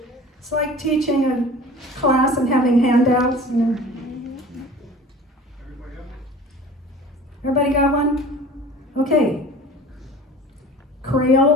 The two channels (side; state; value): both; normal; correlation 0.42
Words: It's like teaching a class and having handouts. You know. Everybody got one? Okay.